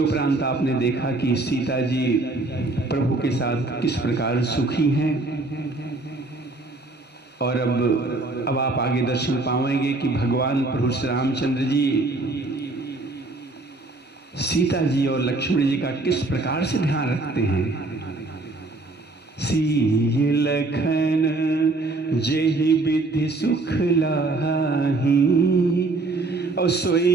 आपने देखा कि सीता जी प्रभु के साथ किस प्रकार सुखी हैं। और अब आप आगे दर्शन पाएंगे कि भगवान प्रभु श्री रामचंद्र जी सीता जी और लक्ष्मण जी का किस प्रकार से ध्यान रखते हैं। सीय लखन जेहि विधि सुख लाही, और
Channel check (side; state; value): left; quieter; 3.2 dB